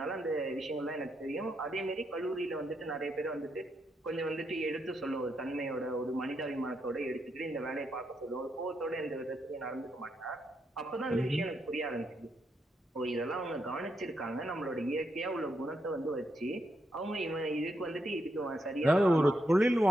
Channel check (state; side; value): normal; both; correlation 0.81